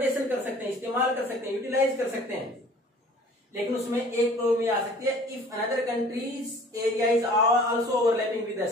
कर सकते हैं, इस्तेमाल कर सकते हैं, यूटिलाइज कर सकते हैं। लेकिन उसमें एक प्रॉब्लम ये आ सकती है, if another countries area is also overlapping with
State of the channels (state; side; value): normal; both; correlation 0.49